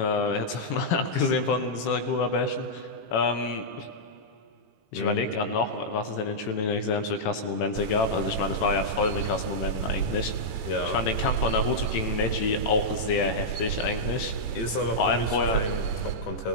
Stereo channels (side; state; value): right; late; 18 ms